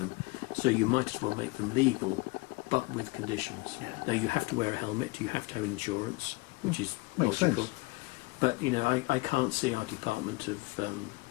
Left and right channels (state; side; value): quieter; right; 24.0 dB